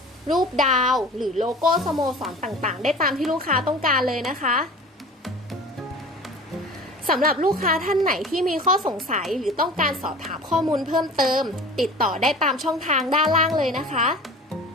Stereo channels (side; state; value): both; normal; correlation 0.40